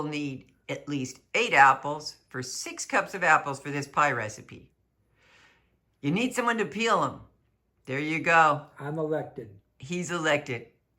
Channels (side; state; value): both; identical; correlation 1.00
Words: need at least 8 apples for 6 cups of apples for this pie recipe. You need someone to peel them. There you go. I'm elected. He's elected.